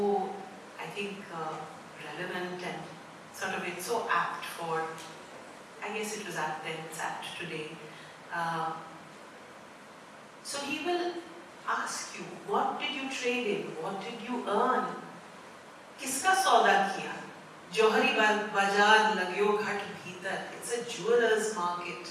I think, relevant and sort of it's so apt for, I guess it was apt then, it's apt today. So he will ask you, what did you trade in? What did you earn? Kiska sauda kiya? Johari bazaar lagyo ghat bhitar. It's a jeweller's market.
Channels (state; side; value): identical; both; correlation 1.00